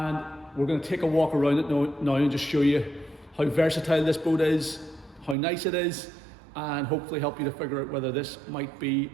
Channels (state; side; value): drops out; left; at 5.4 s